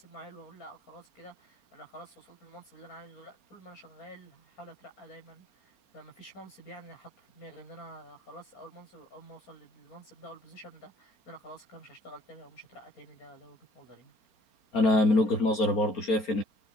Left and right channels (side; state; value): right; late; 4.3 ms